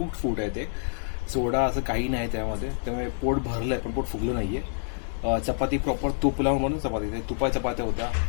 food आहे ते सोडा असं काही नाही त्यामध्ये त्यामुळे पोट भरलं आहे पण पोट फुगलं नाही आहे चपाती प्रॉपर तूप लावून म्हणून चपाती तुपा चपात्या होत्या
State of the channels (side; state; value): right; silent; digital silence